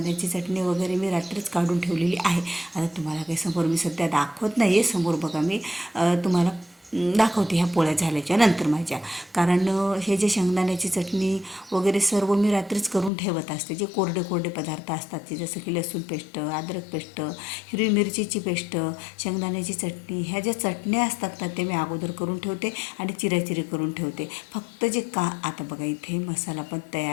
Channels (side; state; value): right; drops out; at 13.1 s